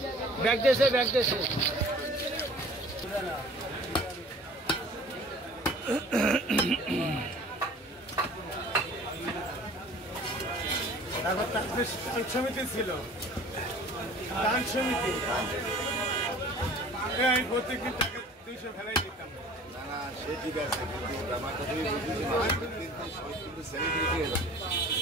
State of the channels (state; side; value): normal; both; correlation 0.47